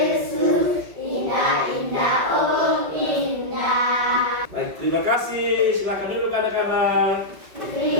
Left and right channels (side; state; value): left; late; 5.5 ms